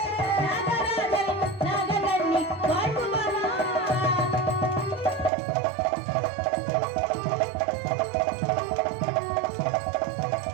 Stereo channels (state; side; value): drops out; left; at 5.3 s